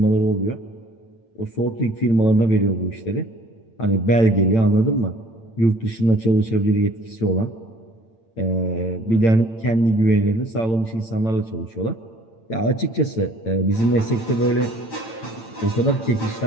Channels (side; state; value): right; late; 8.9 ms